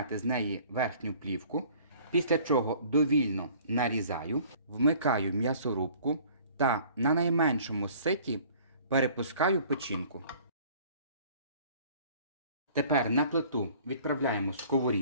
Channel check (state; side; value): inverted; both; correlation -0.52